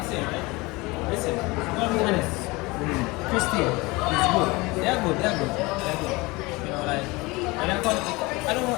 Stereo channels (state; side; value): quieter; right; 23.5 dB